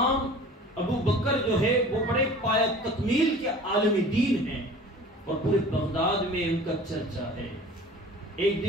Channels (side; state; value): both; normal; correlation 0.43